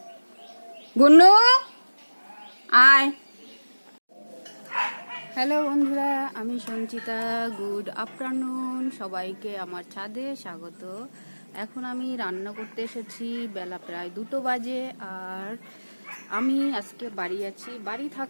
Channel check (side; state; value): both; inverted; correlation -1.00